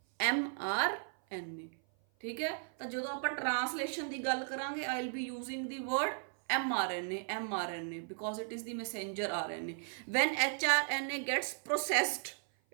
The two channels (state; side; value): silent; left; 54 dB below the other